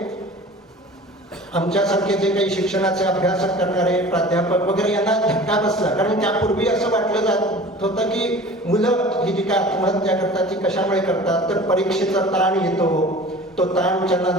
आमच्यासारखे जे काही शिक्षणाचे अभ्यास करणारे प्राध्यापक वगैरे यांना धक्का बसला. कारण त्यापूर्वी असं वाटलं जात होतं की मुलं ही जी काय आत्महत्या करतात ती कशामुळे करतात, तर परीक्षेचा ताण येतो, तो ताण त्यांना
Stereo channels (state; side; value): normal; both; correlation 0.41